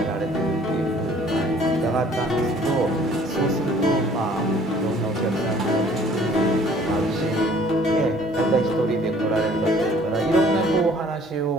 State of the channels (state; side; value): normal; both; correlation 0.55